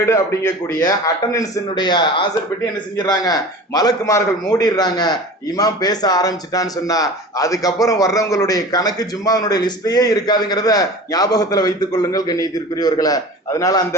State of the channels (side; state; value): both; normal; correlation 0.37